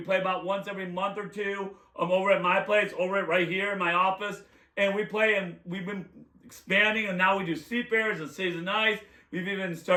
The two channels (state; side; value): identical; both; correlation 1.00